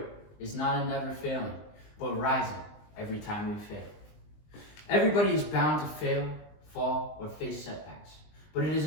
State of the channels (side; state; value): right; late; 20 ms